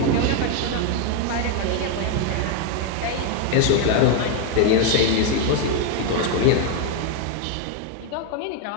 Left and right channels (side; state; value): both; different; correlation 0.01